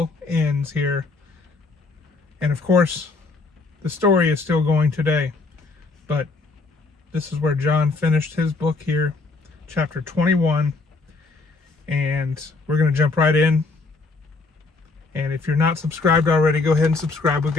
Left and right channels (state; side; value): quieter; right; 3.7 dB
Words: ends here. And of course, the story is still going today. But this is where John finished his book here, chapter 21. And we're going to jump right in. And if you're not subscribed already, go ahead and subscribe. We've